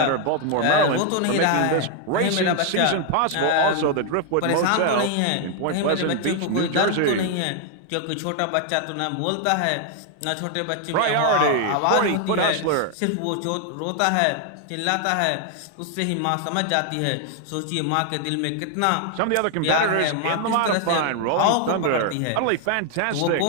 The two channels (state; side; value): different; both; correlation 0.00